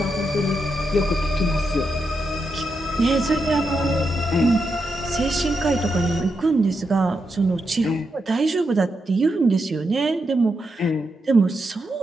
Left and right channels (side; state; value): both; normal; correlation 0.84